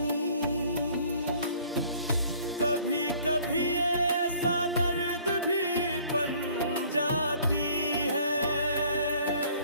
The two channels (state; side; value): inverted; both; correlation -0.56